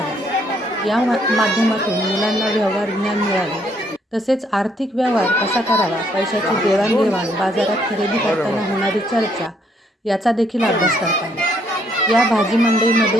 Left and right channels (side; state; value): both; normal; correlation 0.69